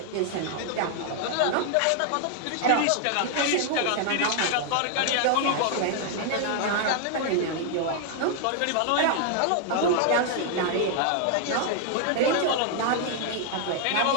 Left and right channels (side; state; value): both; different; correlation 0.00